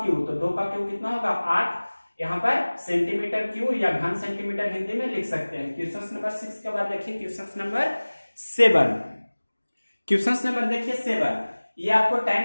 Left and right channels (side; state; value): both; inverted; correlation -1.00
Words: क्यूब। तो 2 का क्यूब कितना होगा, 8। यहाँ पर सेंटीमीटर क्यूब या घन सेंटीमीटर हिंदी में लिख सकते हैं। क्वेश्चन नंबर 6 के बाद देखिए क्वेश्चन नंबर 7। क्वेश्चन नंबर देखिए 7, ये आपको tan